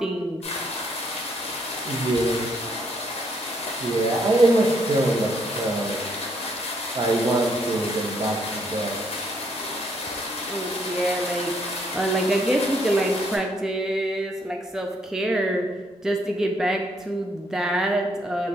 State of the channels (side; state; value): both; normal; correlation 0.70